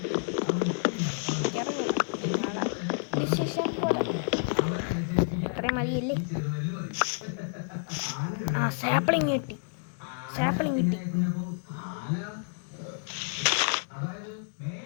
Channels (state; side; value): silent; right; digital silence